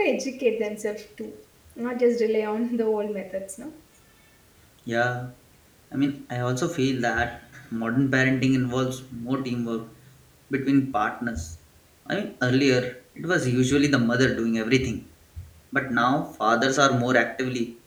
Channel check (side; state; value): both; identical; correlation 1.00